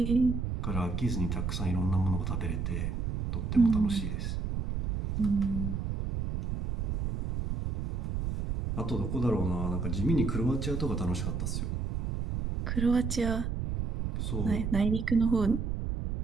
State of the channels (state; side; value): noise; right; rumble, 2 dB below the sound